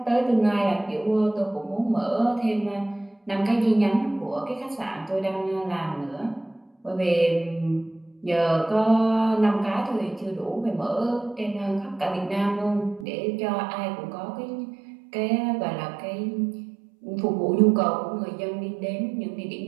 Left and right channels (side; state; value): left; drops out; at 13.1 s